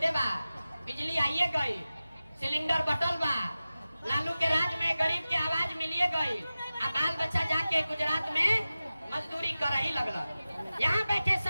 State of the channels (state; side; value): inverted; both; correlation -0.95